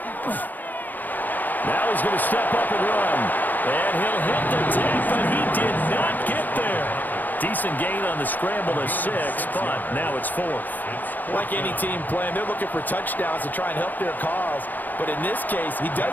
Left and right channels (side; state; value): right; late; 0.085 ms